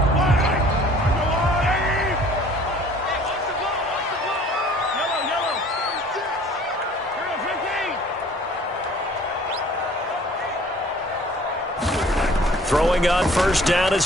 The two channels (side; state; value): both; normal; correlation 0.52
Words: Throwing on first down